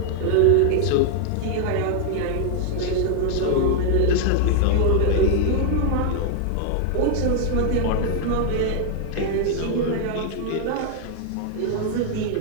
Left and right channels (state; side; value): different; both; correlation 0.00